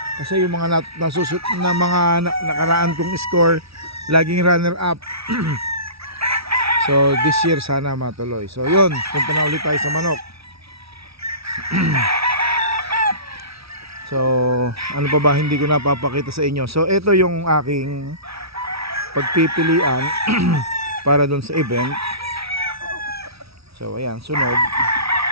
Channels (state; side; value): late; left; 0.76 ms